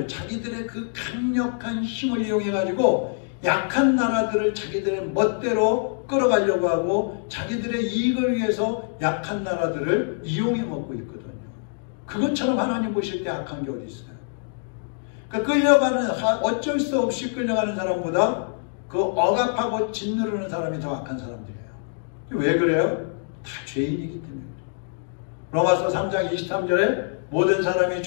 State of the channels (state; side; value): silent; right; digital silence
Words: 자기들의 그 강력한 힘을 이용해 가지고 약한 나라들을 자기들의 멋대로 끌어가려고 하고 자기들의 이익을 위해서 약한 나라들을 이용해 먹고 있거든요. 그것처럼 하나님 보실 때 악한 게 어디 있어요? 그러니까 끌려가는 어쩔 수 없이 끌려가는 사람보다 그 억압하고 짓누르는 사람이 더 악한 사람들이에요. 왜 그래요? 다 죄인이기 때문에. 로마서 3장 23절에 모든 사람이